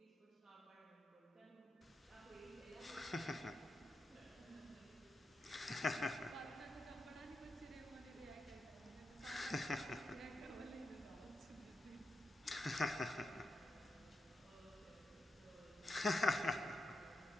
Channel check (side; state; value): both; normal; correlation 0.87